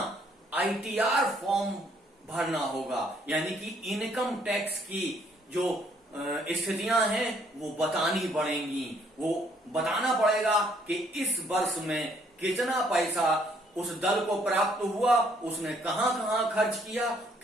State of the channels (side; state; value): both; normal; correlation 0.66